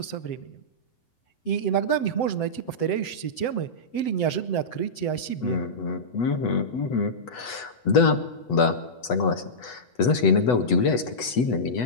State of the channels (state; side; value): late; right; 8.1 ms